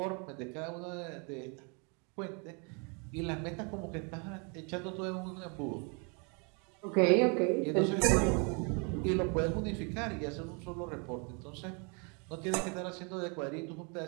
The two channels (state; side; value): quieter; left; 34.7 dB